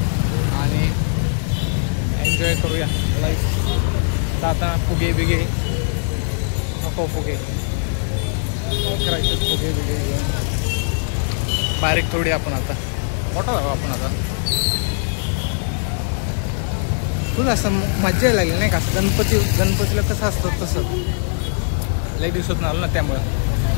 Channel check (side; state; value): right; silent; digital silence